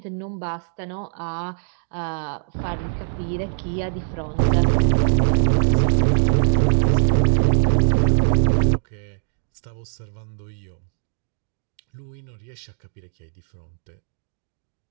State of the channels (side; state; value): left; silent; digital silence